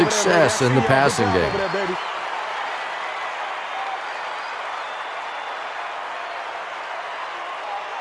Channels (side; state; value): both; identical; correlation 1.00